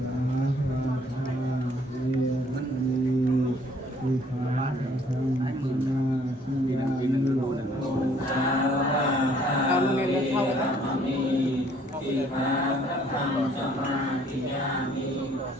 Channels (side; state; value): both; normal; correlation 0.61